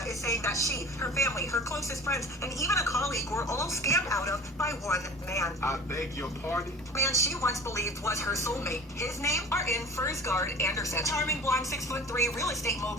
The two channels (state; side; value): normal; both; correlation 0.40